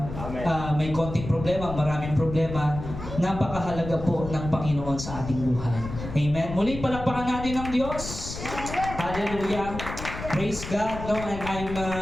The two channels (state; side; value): noise; left; rumble, 9 dB below the sound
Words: May konting problema, maraming problema, napakahalaga po ng Panginoon sa ating buhay. Amen. Muli palakpakan natin ang Diyos. Hallelujah. Praise God, no? And I'm